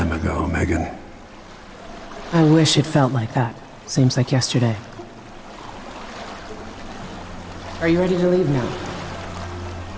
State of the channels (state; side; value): identical; both; correlation 1.00